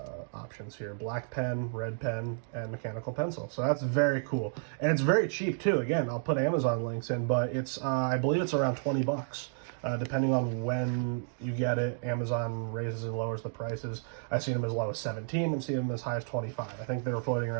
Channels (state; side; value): silent; left; digital silence